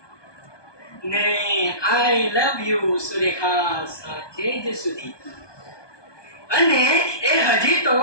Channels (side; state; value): right; late; 1.2 ms